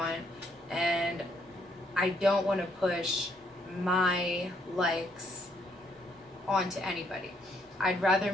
and I don't want to push my likes onto anybody. I'd rather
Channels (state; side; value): normal; both; correlation 0.71